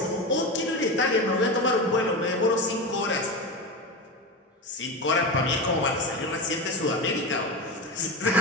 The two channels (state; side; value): normal; both; correlation 0.21